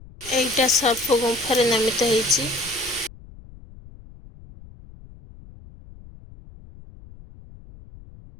एटा सर्प गुंफा रे नामित ହେଇछि।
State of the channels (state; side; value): noise; left; rumble, 20 dB below the sound